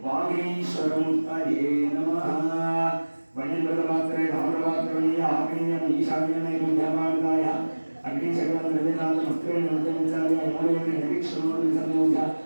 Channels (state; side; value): inverted; both; correlation -1.00